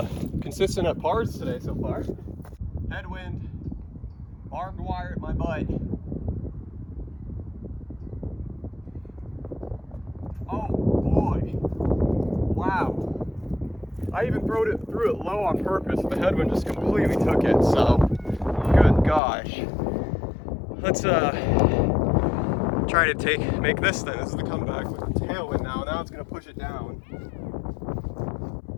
consistent at pars today so far. Headwind, barbed wire at my butt. Oh boy, wow. I even threw it low on purpose and the headwind just completely took it, so good gosh. Let's try to make this then. This is the comeback with the tailwind now. Now it's gonna push it down.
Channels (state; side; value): drops out; right; at 19.2 s